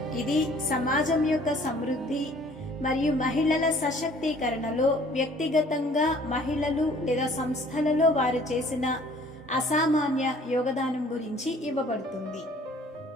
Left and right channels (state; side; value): normal; both; correlation 0.54